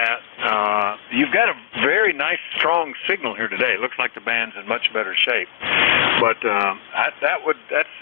You've got a very nice, strong signal here today. It looks like the band's in much better shape. But that's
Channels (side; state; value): right; quieter; 15.4 dB